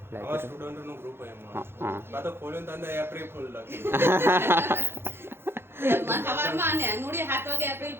આવા સ્ટુડન્ટ નું ગ્રુપ એમાં હા બા તો ખોલ્યો તો અંદર એપ્રિલ ફૂલ લખી સવારમાં ને નુડી 7 વાગે એપ્રિલ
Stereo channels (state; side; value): late; left; 0.11 ms